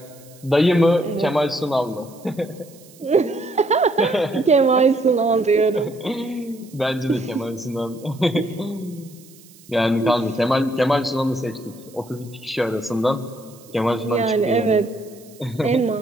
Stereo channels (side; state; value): right; noise; hiss, 24 dB below the sound